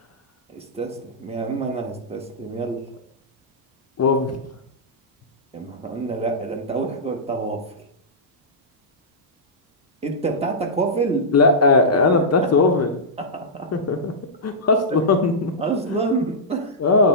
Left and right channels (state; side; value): normal; both; correlation -0.14